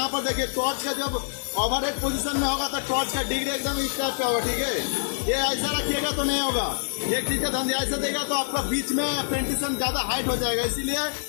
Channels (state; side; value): silent; right; 61 dB below the other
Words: पर देखिए टॉर्च का जब ओवरहेड पोजीशन में होगा तो टॉर्च का डिग्री एकदम इस टाइप का होगा। ठीक है, ये ऐसा रखिएगा तो नहीं होगा। एक चीज का ध्यान दिया, ऐसा देगा तो आपका बीच में पेंटिशन ज्यादा हाइट हो जाएगा, इसीलिए